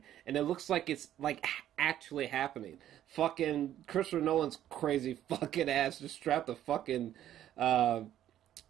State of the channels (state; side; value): quieter; left; 11.7 dB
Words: and it looks like it's like actually happening. Fucking Christopher Nolan's crazy fucking ass just strapped a fucking